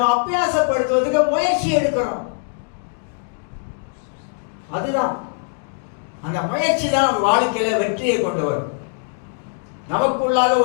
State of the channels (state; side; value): silent; right; digital silence